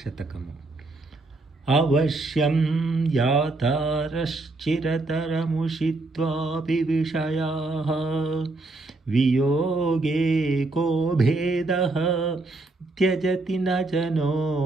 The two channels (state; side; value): quieter; left; 3.2 dB